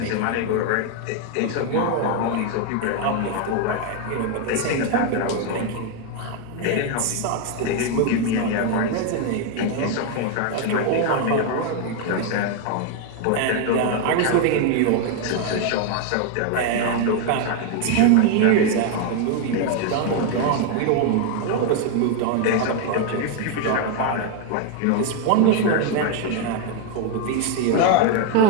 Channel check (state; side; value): different; both; correlation 0.01